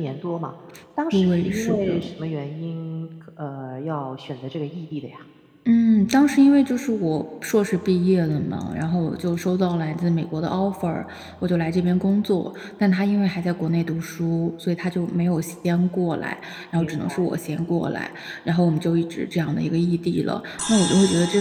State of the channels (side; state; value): both; identical; correlation 1.00